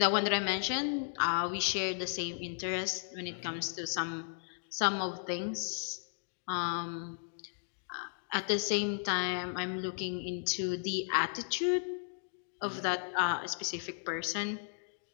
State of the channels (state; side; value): silent; right; digital silence